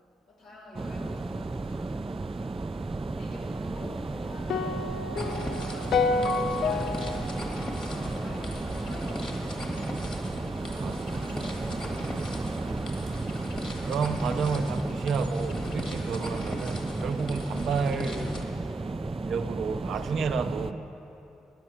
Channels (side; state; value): both; normal; correlation 0.78